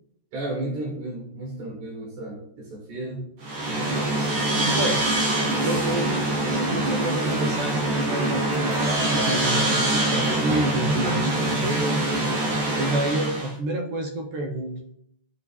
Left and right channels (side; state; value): left; late; 14 ms